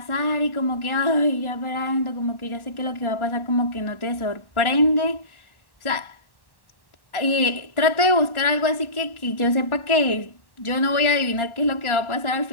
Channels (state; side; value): late; right; 1.1 ms